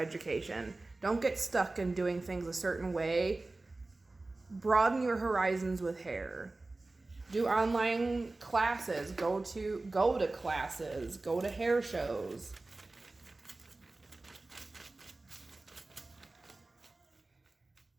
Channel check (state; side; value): quieter; left; 3.1 dB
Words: Don't get stuck in doing things a certain way. Broaden your horizons with hair. Do online classes, go to classes, go to hair shows.